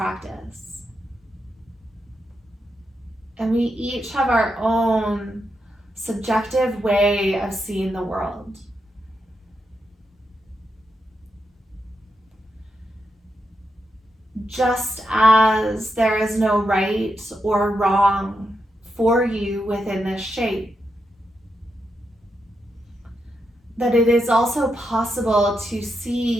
And we each have our own subjective way of seeing the world. Just as there is no right or wrong for you within this shape, that it is also possible to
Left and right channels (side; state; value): both; normal; correlation 0.84